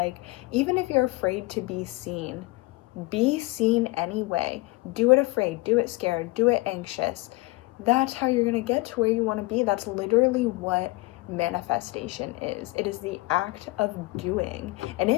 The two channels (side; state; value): right; quieter; 22.6 dB